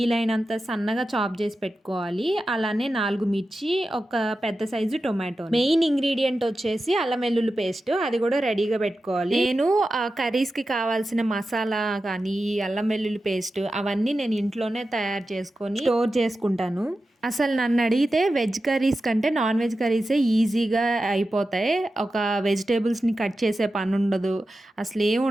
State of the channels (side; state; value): both; normal; correlation 0.92